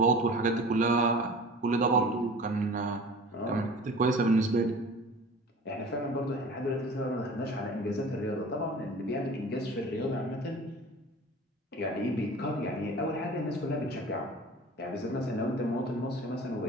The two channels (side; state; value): both; normal; correlation 0.41